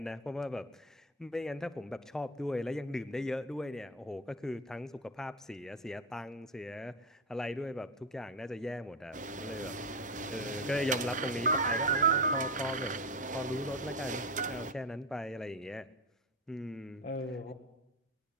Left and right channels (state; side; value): normal; both; correlation 0.16